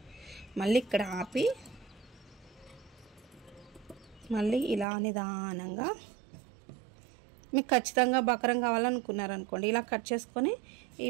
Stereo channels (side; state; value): left; drops out; at 4.9 s